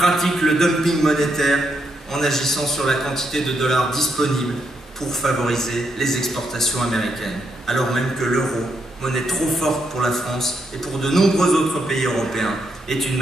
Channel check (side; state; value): both; normal; correlation 0.79